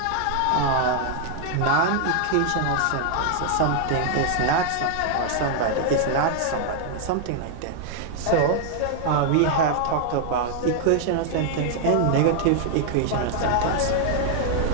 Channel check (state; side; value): different; both; correlation 0.00